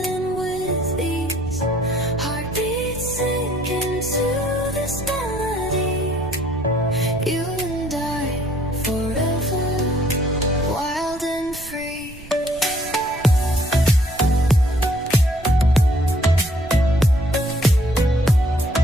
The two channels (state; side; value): noise; right; rumble, 17 dB below the sound